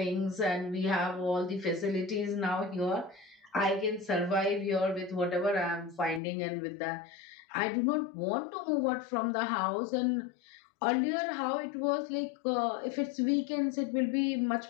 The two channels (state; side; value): drops out; right; at 6.2 s